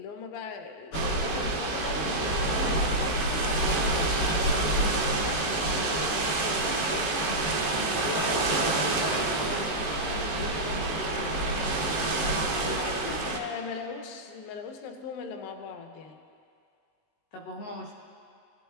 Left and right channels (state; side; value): late; right; 19 ms